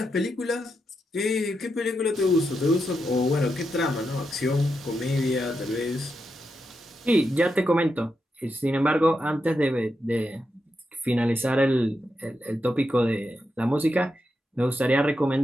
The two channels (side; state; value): both; normal; correlation 0.85